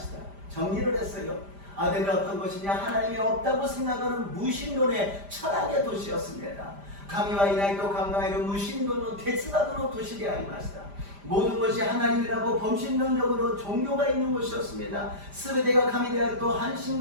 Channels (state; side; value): late; left; 5.0 ms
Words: た. 정리를 했어요. 아덴은 어떤 것이냐? 하나님이 없다고 생각하는 무신론의 철학의 도시였습니다. 神はいないと考える無神論の哲学の都市でありました。 모든 것이 하나님이라고 범신론적으로 종교가 있는 곳이었습니다. 全てが神であると半神